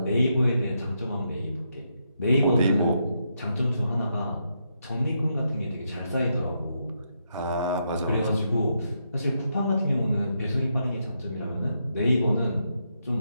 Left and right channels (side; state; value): both; inverted; correlation -0.81